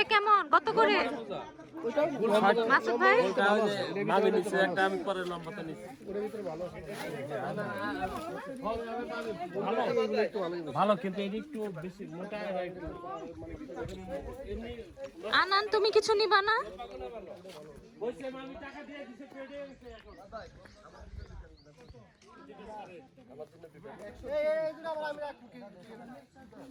কেমন, কত করে মাসুদ ভাই? ভালো, কিন্তু এটা একটু বেশি মোটা। আনান, তুমি কিছু নিবা না?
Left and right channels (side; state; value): both; identical; correlation 1.00